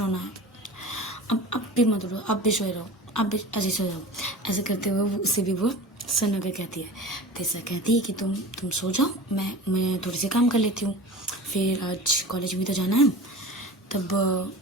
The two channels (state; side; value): normal; both; correlation 0.35